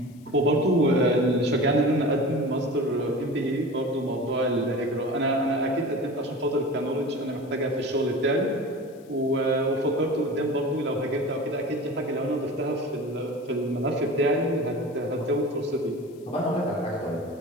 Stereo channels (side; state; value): left; noise; hiss, 30 dB below the sound